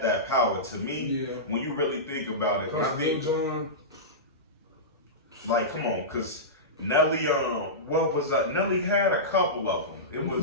that power. To me, when you really think about it, I think like come on, because Nelly, what was that? Nelly had a couple of them. It was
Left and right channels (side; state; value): both; normal; correlation -0.16